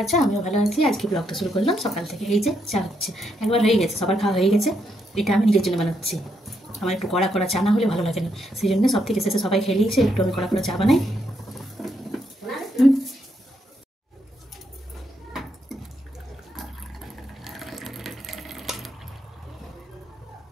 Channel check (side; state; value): both; normal; correlation 0.78